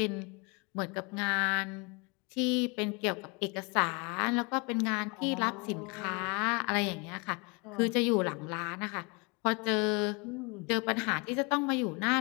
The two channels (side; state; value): right; quieter; 29.5 dB